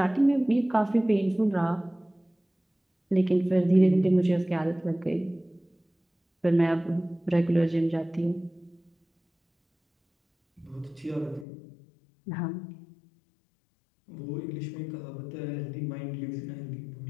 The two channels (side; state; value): right; drops out; at 11.5 s